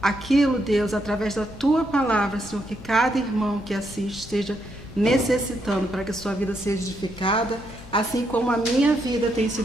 aquilo, Deus, através da Tua palavra, Senhor, que cada irmão que assiste esteja necessitando para que a sua vida seja edificada, assim como a minha vida tem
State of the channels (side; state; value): left; noise; hum, 18 dB below the sound